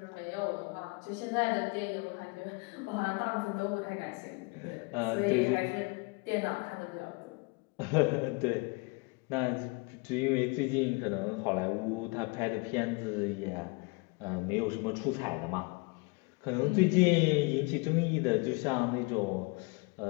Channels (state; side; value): quieter; right; 29.2 dB